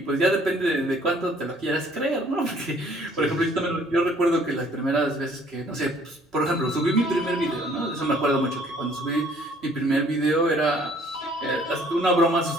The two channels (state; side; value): normal; both; correlation 0.59